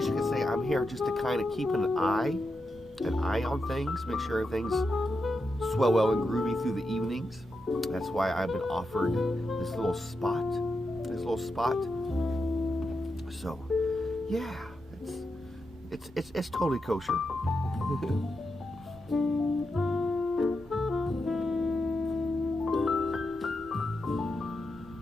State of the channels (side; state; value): both; normal; correlation 0.87